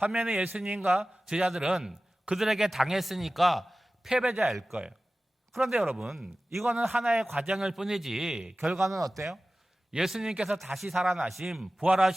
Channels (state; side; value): normal; both; correlation 0.96